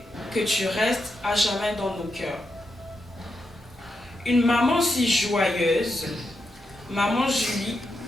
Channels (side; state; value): both; normal; correlation 0.85